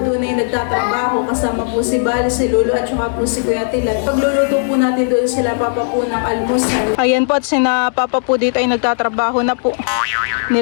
doon ay nagtatrabaho kasama po si Bali, si Lolo at saka po si Kuya Tilan. Pagluluto po natin doon sila papa po ng almusal. Ayan po at sina papa po dito ay nagtatrabaho na po.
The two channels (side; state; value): right; silent; digital silence